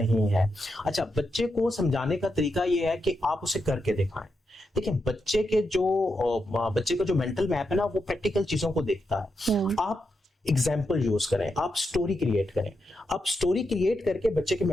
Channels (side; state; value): both; normal; correlation 0.85